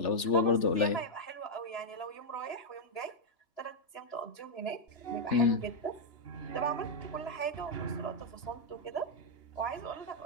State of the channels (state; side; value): late; right; 3.4 ms